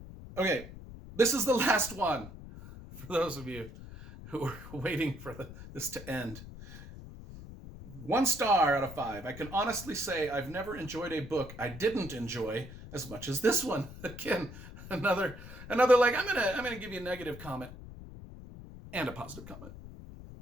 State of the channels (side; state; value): left; noise; rumble, 14 dB below the sound